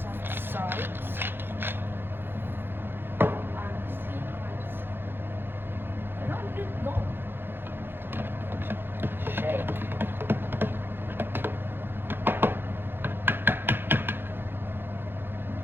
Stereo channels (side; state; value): left; late; 0.10 ms